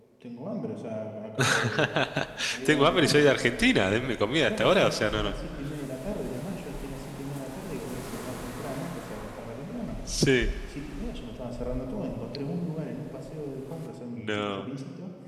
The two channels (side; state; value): both; identical; correlation 1.00